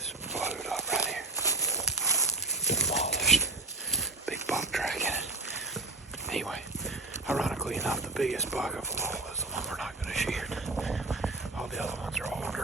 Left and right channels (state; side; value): quieter; left; 3.1 dB